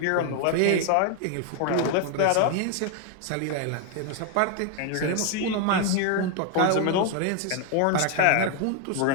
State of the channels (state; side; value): different; both; correlation 0.01